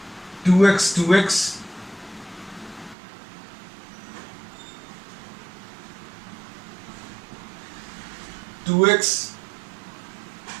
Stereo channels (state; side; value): drops out; left; at 3.0 s